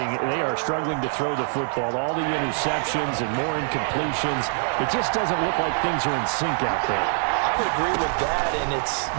They are struggling to throw the football. All the interceptions and more incompletions. It just doesn't look like things are in sync out there. I would agree with that, and it's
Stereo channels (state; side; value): silent; left; 62 dB below the other